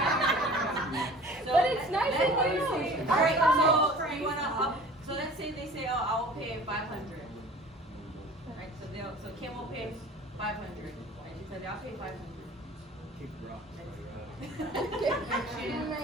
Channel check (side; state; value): both; normal; correlation 0.45